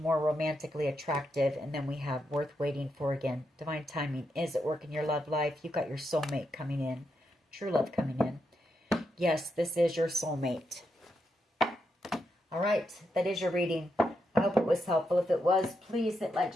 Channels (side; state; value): both; normal; correlation 0.83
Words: romantically attractive. And then we have worth waiting for again. Divine timing is at work in your love life. You've got your soulmate coming in. True love coming in. Yes, this is your soulmate. All right, that is your reading. I hope it was helpful. If it was, please hit like,